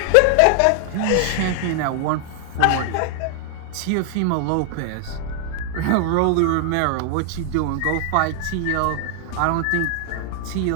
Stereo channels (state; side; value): different; both; correlation 0.00